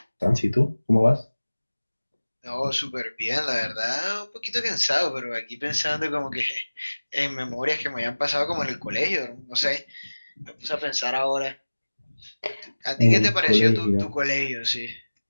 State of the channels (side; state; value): both; inverted; correlation -1.00